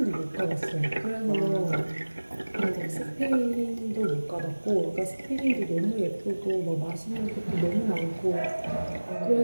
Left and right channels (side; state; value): both; inverted; correlation -1.00